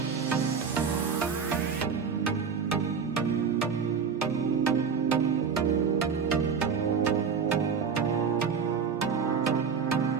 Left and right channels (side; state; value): left; quieter; 6.2 dB